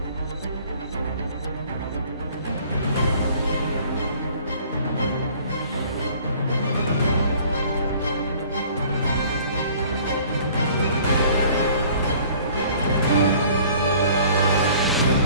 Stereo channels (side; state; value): both; inverted; correlation -0.52